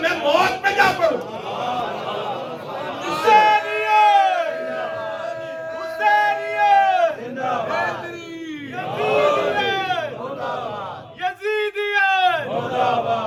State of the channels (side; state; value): both; identical; correlation 1.00